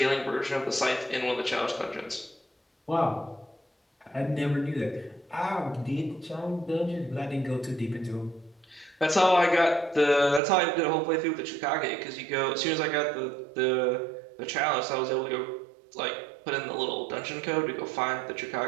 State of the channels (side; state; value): left; drops out; at 10.4 s